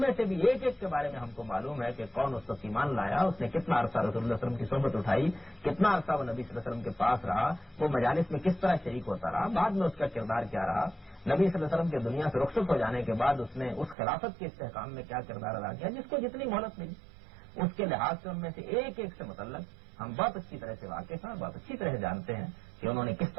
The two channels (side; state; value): left; drops out; at 14.0 s